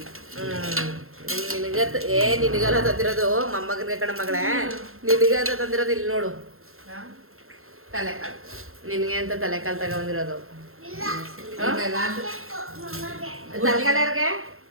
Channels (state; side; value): late; left; 0.62 ms